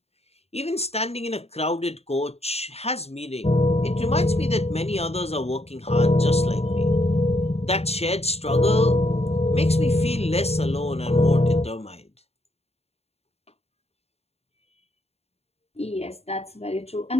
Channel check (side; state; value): right; late; 0.30 ms